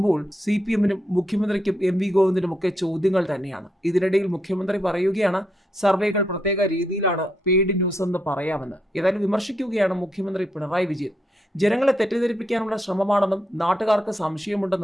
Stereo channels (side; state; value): both; normal; correlation 0.80